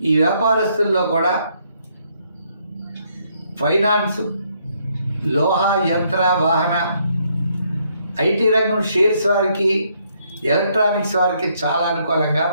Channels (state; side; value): inverted; both; correlation -0.71